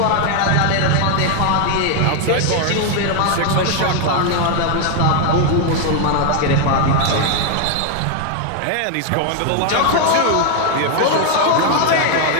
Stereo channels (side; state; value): both; different; correlation 0.00